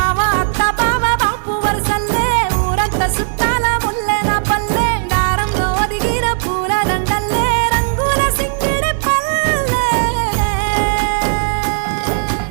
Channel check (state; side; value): silent; left; digital silence